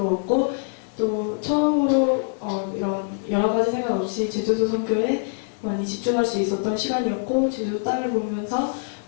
또 처음으로 이런 여러 가지 생각 없이 제주도 선교에 많이 집중할 수 있었던 시간이었고 제주도 땅을 보면서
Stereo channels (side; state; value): right; silent; digital silence